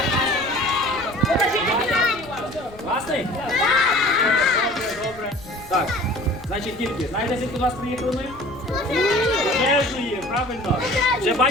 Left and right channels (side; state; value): left; noise; rumble, 20 dB below the sound